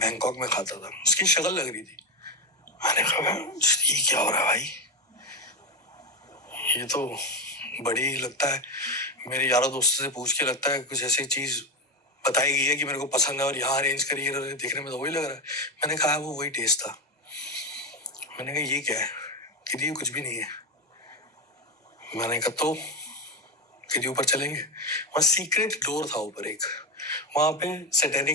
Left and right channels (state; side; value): normal; both; correlation 0.13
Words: में खाता था। उसकी शक्ल लग रही थी। मैंने कहा ये क्या हो रहा है भाई, ये तो बड़ी लगता है, मेरे यारों दोस्तों से पूछ के लगता है कुछ ऐसी चीज बताई गई है कि मेरे को पसंद है और यहाँ अरेंज करी है, देखने में तो वही लग रहा है। मैंने कहा वो वही टेस्ट था। मैंने कहा ये क्या है? कि ये कुछ भी नहीं है। मैंने कहा तो कि ऊपर चलेंगे। वहाँ सीक्रेट डोर था ऊपर एक, वहाँ पे